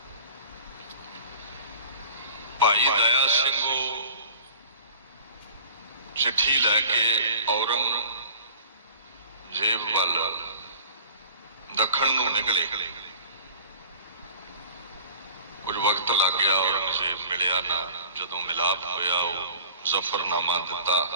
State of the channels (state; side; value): inverted; both; correlation -0.43